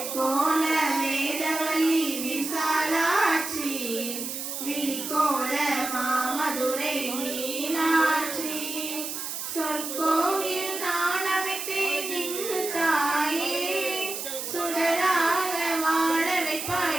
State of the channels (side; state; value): right; noise; hiss, 5 dB below the sound